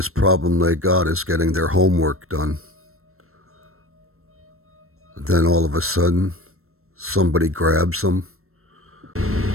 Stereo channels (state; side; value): late; left; 0.62 ms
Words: problem they got is getting their homework done. Then all of a sudden, somebody grabs them.